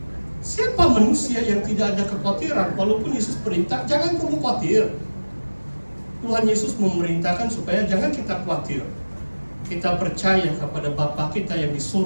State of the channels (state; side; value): inverted; both; correlation -1.00